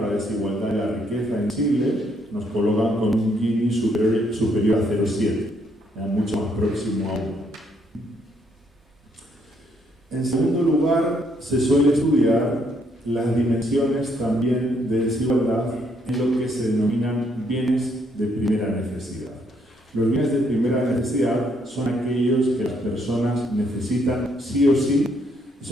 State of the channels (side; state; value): both; normal; correlation 0.71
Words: la desigualdad de la riqueza en Chile nos colocan con un Gini superior a 0,7, mucho más próximo a 1. En segundo lugar, se suele estudiar las dimensiones también de desigualdad en lo que se denominan bienes de primera necesidad. Los bienes de primera necesidad son aquellos que las personas necesitan sí o sí, y